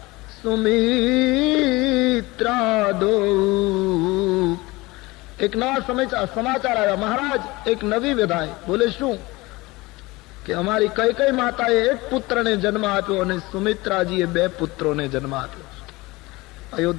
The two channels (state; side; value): quieter; right; 21.8 dB